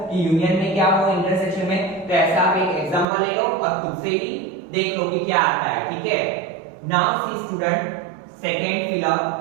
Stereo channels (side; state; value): left; drops out; at 3.1 s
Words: कि यूनियन में क्या हो, इंटरसेक्शन में, तो ऐसा आप एक एग्जांपल ले लो और खुद से ही देख लो कि क्या आता है। ठीक है, now see student, second fill up,